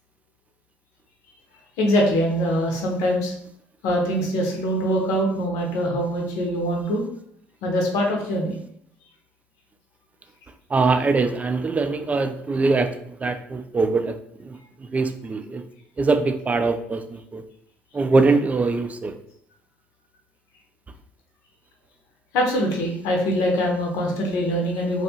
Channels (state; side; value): normal; both; correlation 0.69